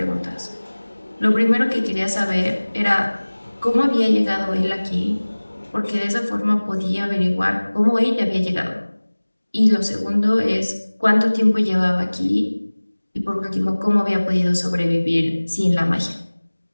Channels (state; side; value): inverted; both; correlation -1.00